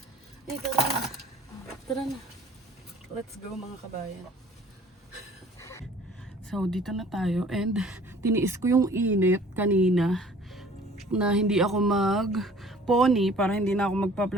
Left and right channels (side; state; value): both; normal; correlation 0.51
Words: Ay, tara na. Tara na. Let's go mga kabayan. So, dito na tayo. And, tiniis ko yung init kanina na hindi ako mag-pony para hindi na ako